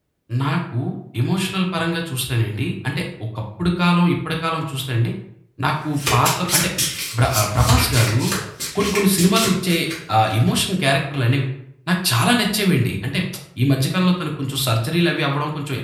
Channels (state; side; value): identical; both; correlation 1.00